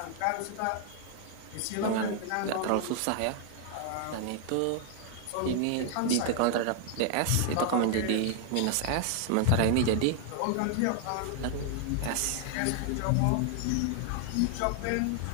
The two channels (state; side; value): different; both; correlation 0.00